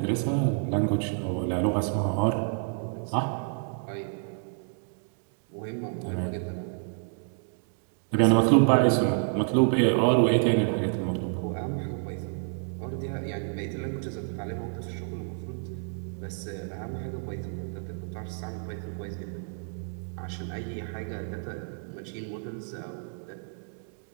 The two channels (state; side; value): silent; left; 56 dB below the other